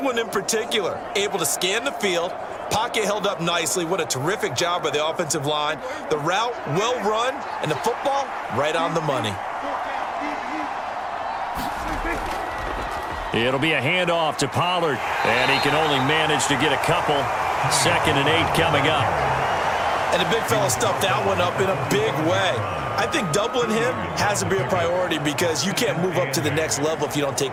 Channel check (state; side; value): identical; both; correlation 1.00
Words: in particular, able to scan the field, pocket held up nicely. What a terrific job by the offensive line. The route, well run, and the football, right on the money. It'll be a handoff to Pollard, and he can only manage to get a couple. 2nd and 8 coming up. And the big fella stuffed that one up in a big way. I think doubling him has to be a priority because you can't move up to the next level if you don't